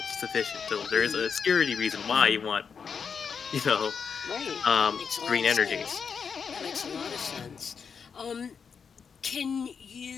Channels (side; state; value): right; quieter; 6.2 dB